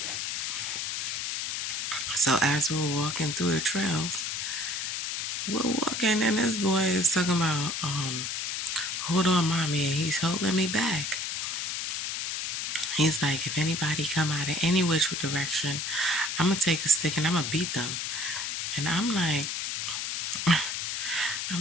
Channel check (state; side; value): noise; left; hiss, 2 dB below the sound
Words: So as we were walking through the trails, we're walking, and this boy is talking about, hold on, mommy, and he's holding me back. He's like, if anybody come out of any which direction, I'm gonna take a stick and I'm gonna beat them. And I'm like,